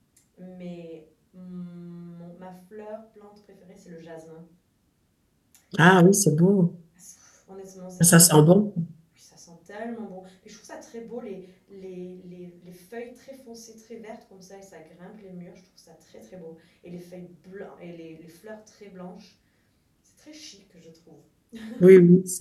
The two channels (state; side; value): identical; both; correlation 1.00